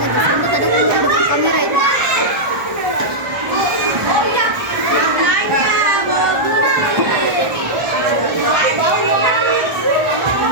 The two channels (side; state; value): left; late; 1.4 ms